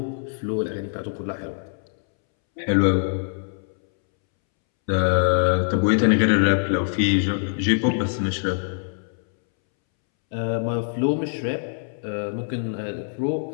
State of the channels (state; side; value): silent; right; 63 dB below the other